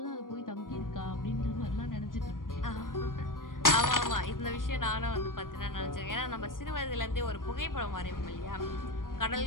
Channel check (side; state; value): right; late; 0.90 ms